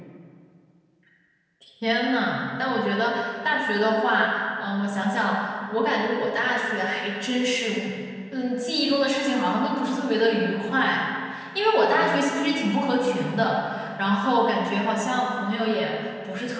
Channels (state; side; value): identical; both; correlation 1.00